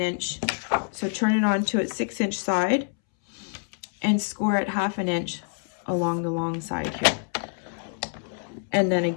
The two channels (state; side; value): silent; right; 61 dB below the other